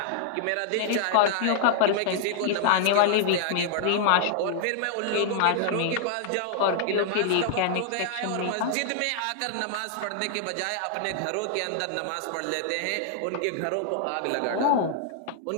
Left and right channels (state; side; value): different; both; correlation -0.01